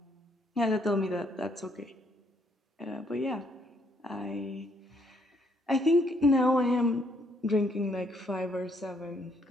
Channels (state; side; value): normal; both; correlation 0.70